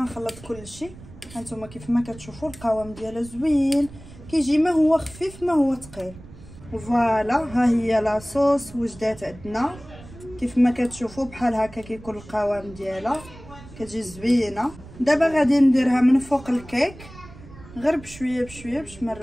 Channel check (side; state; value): right; noise; rumble, 18 dB below the sound